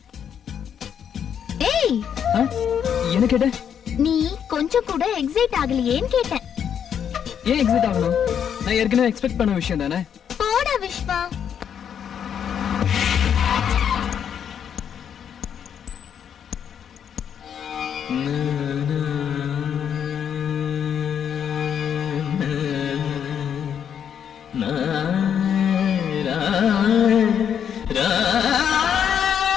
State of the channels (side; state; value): right; quieter; 8.4 dB